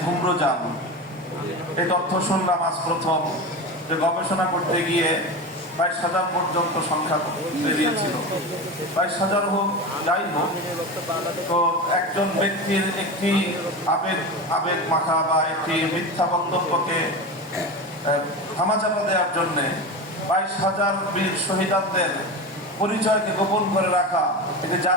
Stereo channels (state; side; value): normal; both; correlation 0.24